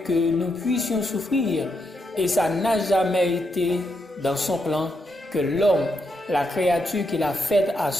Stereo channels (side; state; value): both; normal; correlation 0.81